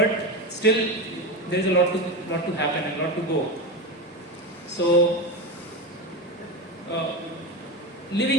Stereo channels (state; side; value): normal; both; correlation 0.19